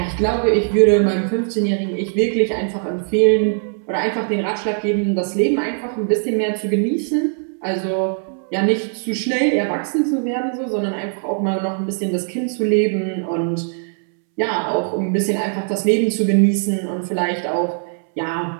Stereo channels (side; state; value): left; silent; 66 dB below the other